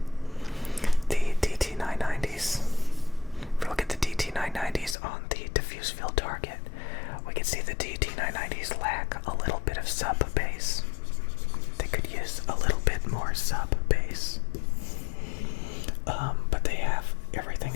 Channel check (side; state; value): right; drops out; at 5.0 s